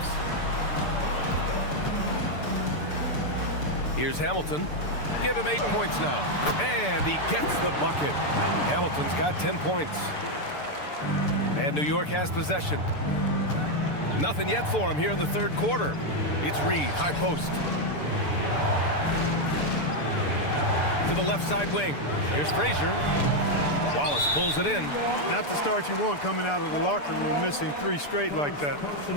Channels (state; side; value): late; right; 6.8 ms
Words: Here's Hamilton. Give him 8 points now. And he gets the bucket. Hamilton's got 10 points. And New York has possession. Nothing yet for him here in the third quarter. It's Reed, high post. To the left side wing. Here's Frazier. Wallace pulls it in. Not the start you want coming out of the locker room, missing 3 straight like that.